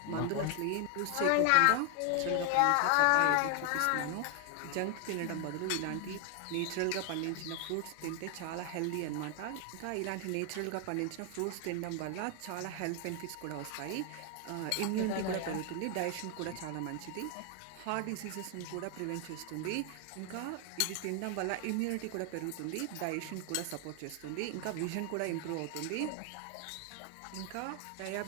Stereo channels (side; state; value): both; different; correlation 0.00